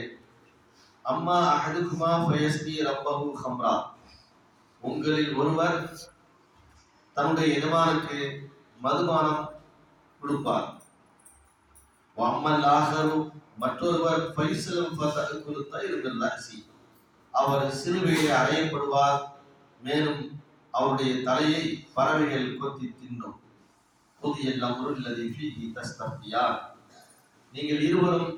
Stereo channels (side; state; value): both; identical; correlation 1.00